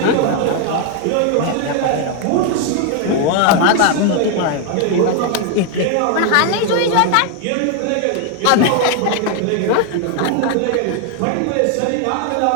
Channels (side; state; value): both; different; correlation 0.00